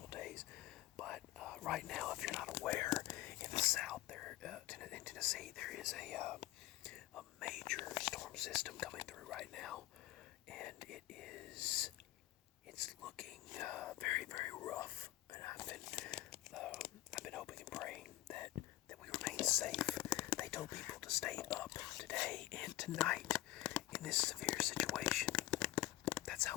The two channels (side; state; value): right; quieter; 16.1 dB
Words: days. But right now, if you're not aware, in the south, there in Tennessee, there is a major storm system coming through right now, and it's looking very, very rough. And I've been hoping and praying that we remain safe. They told people to stay up today and tonight in this severe situation. That's